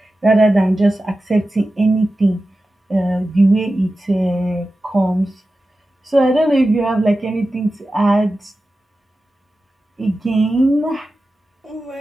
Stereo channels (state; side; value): normal; both; correlation 0.93